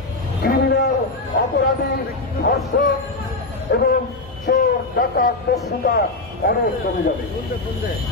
ক্রিমিনাল, অপরাধী, ধর্ষক এবং চোর, ডাকাত, দস্যুতা অনেক কমে যাবে।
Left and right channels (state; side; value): quieter; right; 3.2 dB